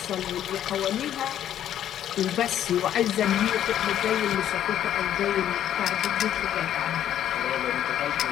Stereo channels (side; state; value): right; quieter; 10.9 dB